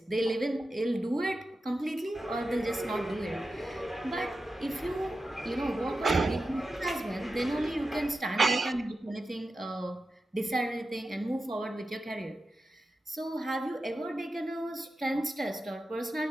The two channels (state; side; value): normal; both; correlation 0.92